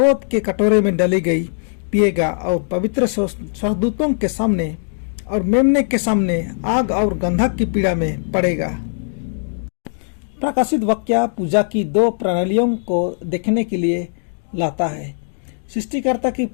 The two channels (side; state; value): right; silent; digital silence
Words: के कटोरे में डाली गई पिएगा, और पवित्र स्वर्गदूतों के सामने और मेमने के सामने आग और गंधक की पीड़ा में पड़ेगा। प्रकाशित वाक्य पूजा की दो प्रणालियों को देखने के लिए लाता है, सृष्टिकर्ता की